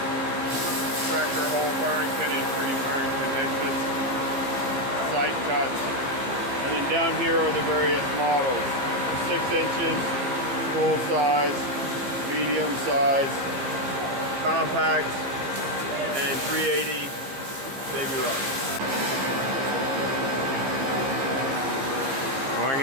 extractor, hole firing pin, entry, firing pin exits, sight cuts, and then down here are the various models: 6 inches, full size, medium size, compact, and 380 baby rock.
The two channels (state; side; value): late; left; 15 ms